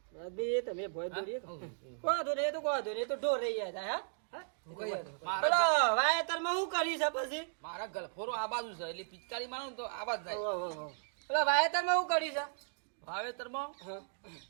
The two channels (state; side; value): silent; left; digital silence